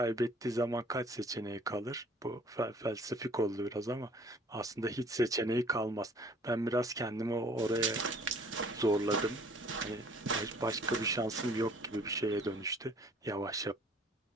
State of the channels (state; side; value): normal; both; correlation 0.55